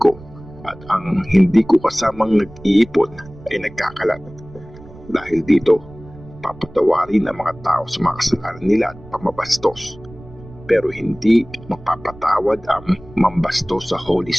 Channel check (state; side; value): noise; right; rumble, 20 dB below the sound